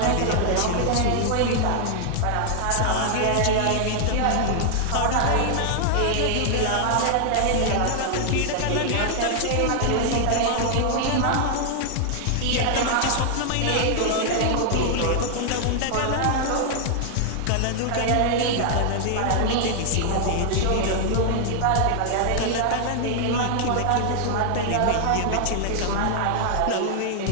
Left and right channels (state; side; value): different; both; correlation -0.01